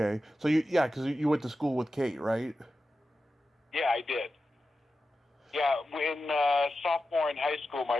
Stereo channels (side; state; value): both; normal; correlation 0.92